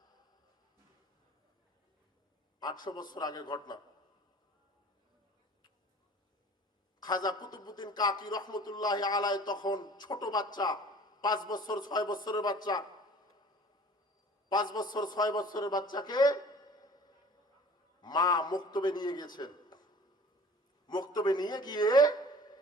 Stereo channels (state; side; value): normal; both; correlation 0.47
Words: 800 বছর আগের ঘটনা। খাজা কুতুবউদ্দিন কাকি রহমতুল্লাহ আলাইহি তখন ছোট বাচ্চা, 5 বছর 6 বছরের বাচ্চা। 5 বছর 6 বছরের বাচ্চাকে মা মক্তবে নিয়ে গেছেন। মক্তবে নিয়ে গিয়ে